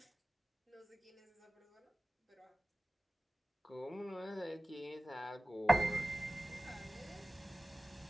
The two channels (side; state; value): both; normal; correlation 0.96